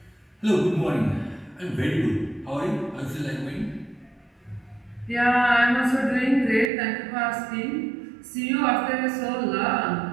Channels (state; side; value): drops out; left; at 6.7 s